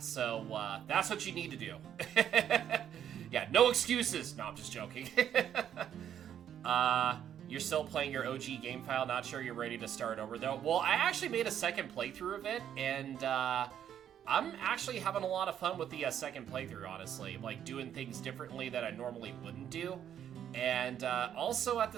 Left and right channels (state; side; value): quieter; left; 9.7 dB